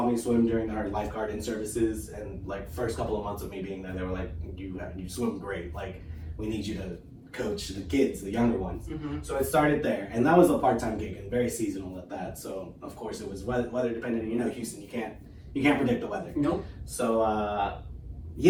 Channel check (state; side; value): identical; both; correlation 1.00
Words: me swim during our lifeguard in services, and like first couple of months of me being there, they were like, you swim great, like we need you to coach the kids, the younger ones. Mm-hmm. So it started there, and that was a part-time gig and very seasonal at that. So of course it was weather dependent. Houston, you can't predict the weather. Nope. So